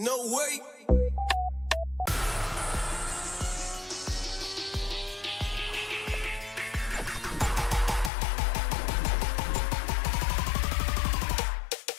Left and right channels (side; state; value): right; drops out; at 8.1 s